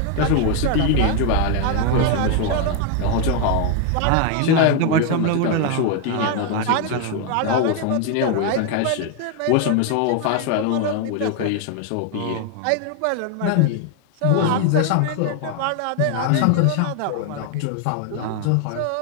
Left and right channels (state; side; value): different; both; correlation 0.01